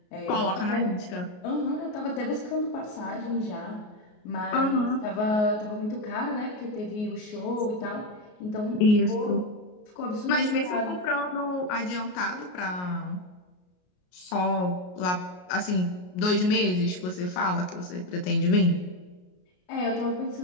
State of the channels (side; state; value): right; late; 33 ms